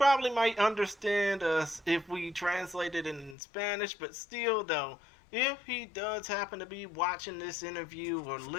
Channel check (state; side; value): drops out; right; at 3.4 s